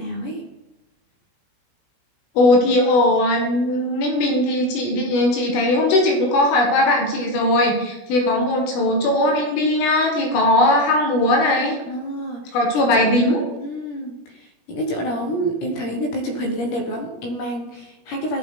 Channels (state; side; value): late; right; 17 ms